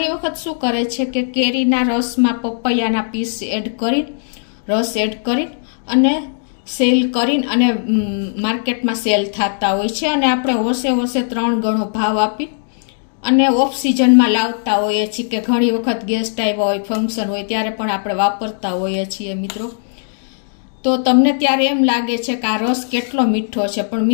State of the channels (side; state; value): right; silent; digital silence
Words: વખત શું કરે છે કે કેરીના રસમાં પપૈયાના પીસ એડ કરી, રસ એડ કરી અને સેલ કરીને અને માર્કેટમાં સેલ થતા હોય છે. અને આપણે હોશે 3 ગણો ભાવ આપી અને ઓફ સિઝનમાં લાવતા હોઈએ છીએ, કે ઘણી વખત ગેસ્ટ આવ્યા હોય, ફંક્શન હોય ત્યારે પણ આપણે વાપરતા હોઈએ છીએ મિત્રો. તો તમને ત્યારે એમ લાગે છે કે આ રસ કેટલો મીઠો છે, પણ